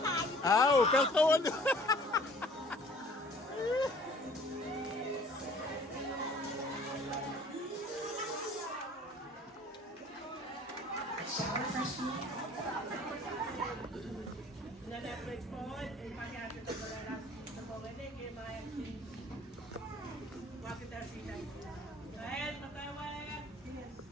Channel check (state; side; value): normal; both; correlation 0.52